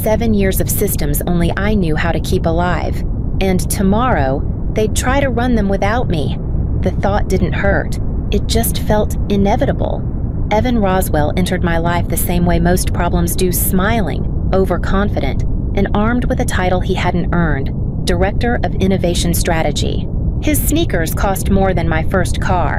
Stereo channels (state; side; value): identical; both; correlation 1.00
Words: years of systems only I knew how to keep alive. And tomorrow, they'd try to run them without me. The thought didn't hurt. It just felt inevitable. Evan Roswell entered my life the same way most problems do, smiling, overconfident, and armed with a title he hadn't earned, Director of Innovation Strategy. His sneakers cost more than my first